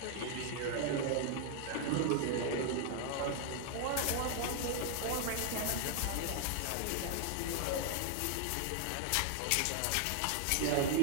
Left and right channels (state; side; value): different; both; correlation 0.00